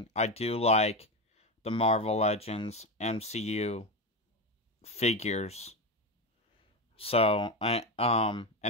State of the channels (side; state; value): both; normal; correlation 0.15